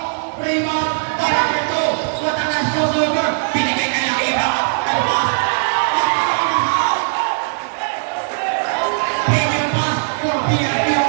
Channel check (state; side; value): silent; left; digital silence